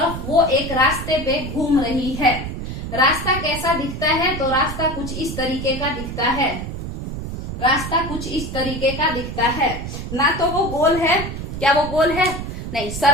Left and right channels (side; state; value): right; noise; rumble, 7 dB below the sound